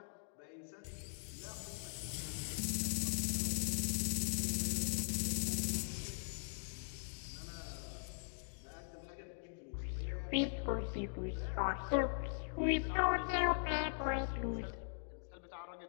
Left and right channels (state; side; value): silent; right; digital silence